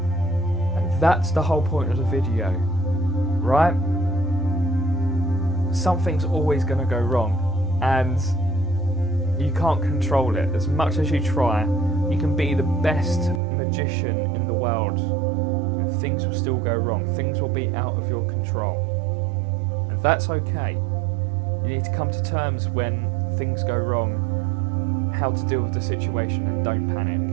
And that's the whole point of the video, right? Something's always going to go wrong, and you can't control it. As much as you try, you can be the best magician in the world, and things will still go wrong. Things will be out of your control, and that's okay. You need to come to terms when things go wrong, how to deal with the situation, and don't panic.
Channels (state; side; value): drops out; left; at 13.4 s